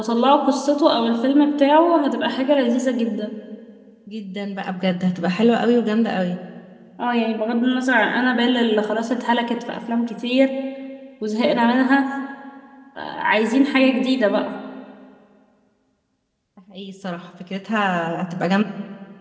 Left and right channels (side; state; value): both; identical; correlation 1.00